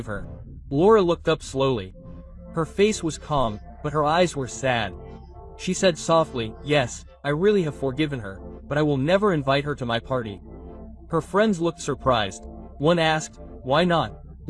her." Laura looked up slowly. Her face was calm, but her eyes were sad. She said softly, "Yes, I really have forgiven her, but I will never invite her to my party." Her friends looked surprised. One asked, "Why not?"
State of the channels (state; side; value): identical; both; correlation 1.00